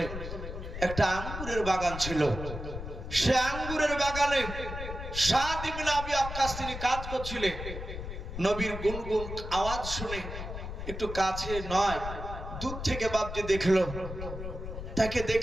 একটা আঙ্গুরের বাগান ছিল। সে আঙ্গুরের বাগানে সাদ ইবনে আবি ওয়াক্কাস তিনি কাজ করছিলেন। নবীর গুনগুন আওয়াজ শুনে একটু কাছে নয়, দূর থেকে বাপজি দেখলো, তাকে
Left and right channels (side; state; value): left; noise; rumble, 7 dB below the sound